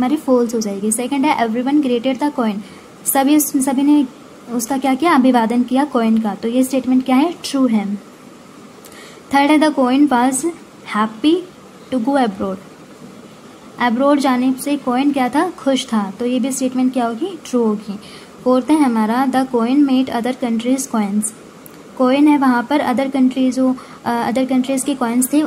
फॉल्स हो जाएगी। सेकंड है एवरीवन ग्रेटेड द कॉइन। सभी ने उसका क्या किया, अभिवादन किया कॉइन का, तो ये स्टेटमेंट क्या है, ट्रू है। थर्ड है the coin was happy to go abroad. Abroad जाने से कॉइन क्या था, खुश था, तो ये भी स्टेटमेंट क्या होगी, ट्रू होगी। फोर्थ है हमारा the coin made other countries coins. Coin है वहाँ पर अदर कंट्रीज के कॉइन्स थे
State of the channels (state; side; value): identical; both; correlation 1.00